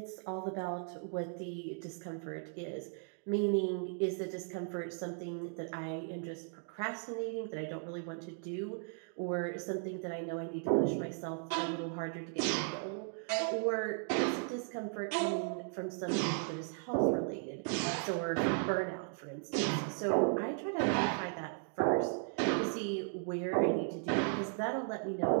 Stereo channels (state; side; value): silent; left; 53 dB below the other